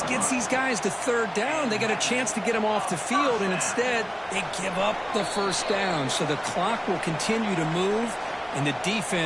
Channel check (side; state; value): both; identical; correlation 1.00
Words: gets these guys to third down. They got a chance to get them off the field, and instead they give up the first down. So the clock will continue to move, and the